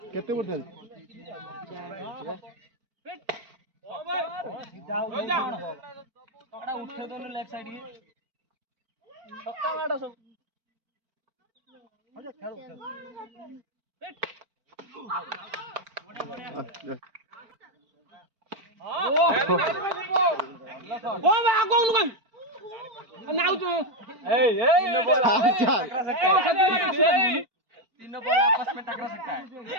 केते बोल उठे दोनों लेफ्ट साइड के छक्का मारो सब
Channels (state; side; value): late; left; 4.4 ms